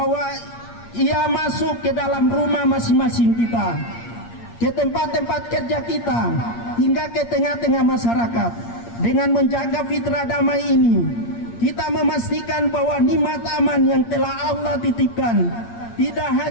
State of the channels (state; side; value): late; right; 8.6 ms